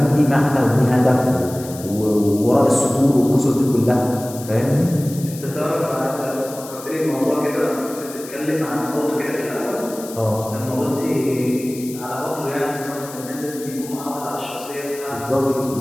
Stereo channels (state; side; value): noise; left; hiss, 15 dB below the sound